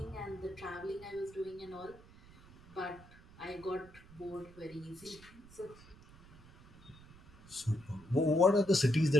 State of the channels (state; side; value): noise; right; rumble, 22 dB below the sound